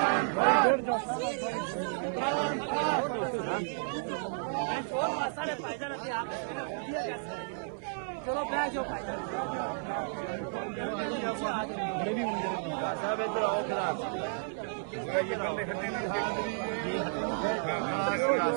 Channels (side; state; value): left; silent; 56 dB below the other